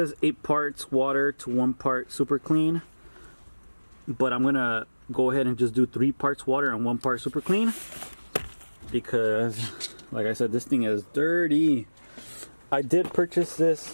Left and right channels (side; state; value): both; inverted; correlation -1.00